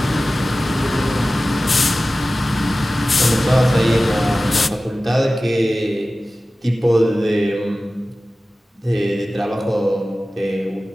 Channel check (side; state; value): both; normal; correlation 0.96